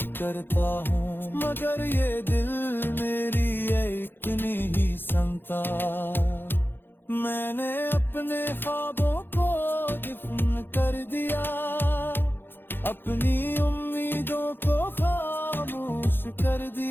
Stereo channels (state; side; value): late; right; 0.10 ms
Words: करता हूँ, मगर ये दिल मेरी एक नहीं सुनता। मैंने अपने ख्वाबों को दफन कर दिया, अपनी उम्मीदों को खामोश कर